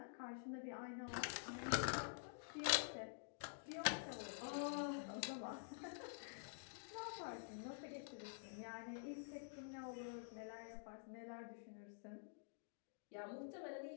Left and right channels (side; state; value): right; silent; digital silence